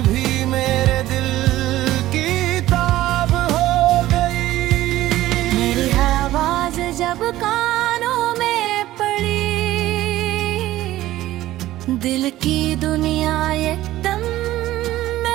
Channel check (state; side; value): quieter; left; 15.3 dB